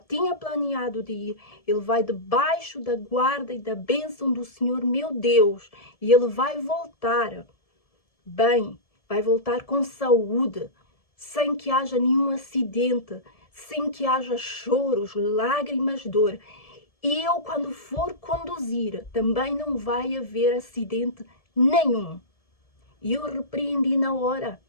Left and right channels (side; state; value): right; late; 1.7 ms